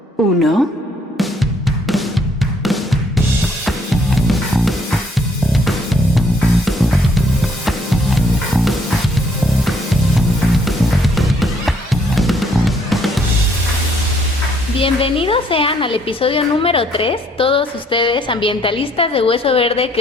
1. Bienvenidos sean al episodio número 3, todos ustedes ambientalistas de Hueso Verde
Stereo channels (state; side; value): normal; both; correlation 0.66